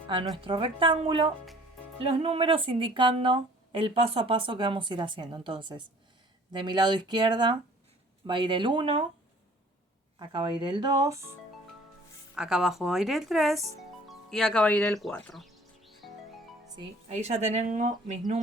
a nuestro rectángulo los números indicando el paso a paso que vamos a ir haciendo. Entonces, de mi lado izquierda va a ir el 1, acá va a ir el 2, acá abajo va a ir el 3 y acá va a ir el 4. ¿Sí? Ahí ya tengo mis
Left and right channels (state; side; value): normal; both; correlation 0.52